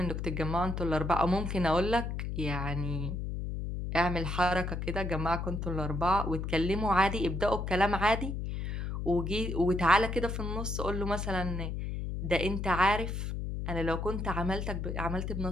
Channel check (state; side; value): noise; left; hum, 3 dB below the sound